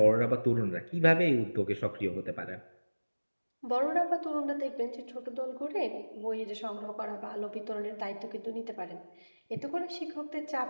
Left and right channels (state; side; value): inverted; both; correlation -1.00